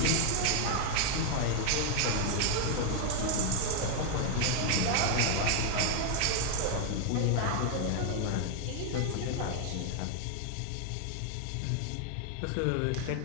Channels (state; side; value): different; both; correlation 0.00